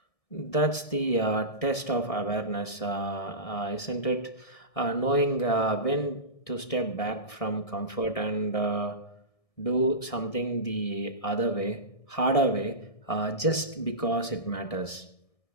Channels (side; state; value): right; late; 1.6 ms